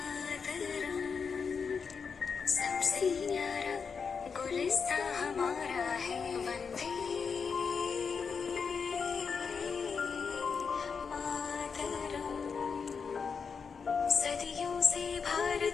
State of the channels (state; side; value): quieter; right; 5.7 dB